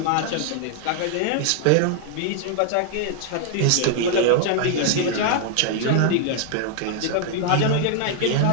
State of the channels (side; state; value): both; different; correlation 0.00